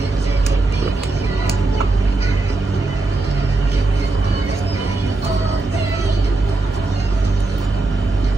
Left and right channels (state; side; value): quieter; left; 3.3 dB